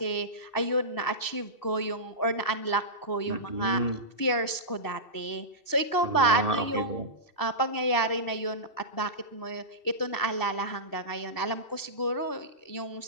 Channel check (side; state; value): right; late; 2.7 ms